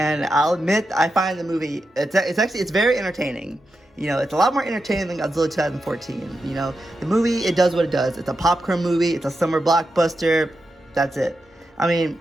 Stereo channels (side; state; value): both; normal; correlation 0.88